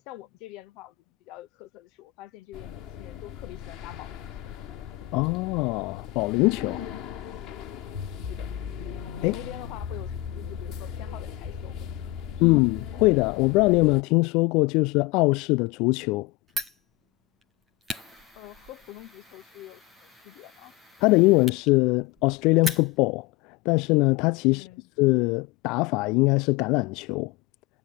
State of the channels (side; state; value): right; quieter; 19.0 dB